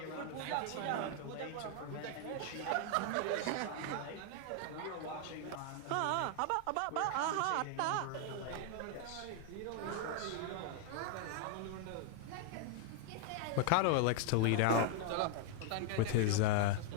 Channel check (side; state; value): both; different; correlation 0.00